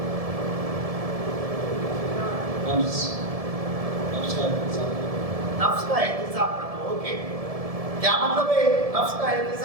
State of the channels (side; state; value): left; late; 1.7 ms